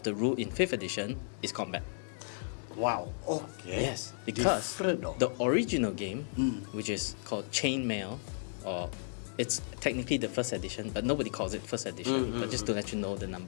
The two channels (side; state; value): right; silent; digital silence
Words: the rule in 5th edition is combat. Wow. Okay. Yes, because Different, though. the original game, which is called Chainmail, or it's technically the 1st edition, but nobody calls it 1st edition. But just to let you know the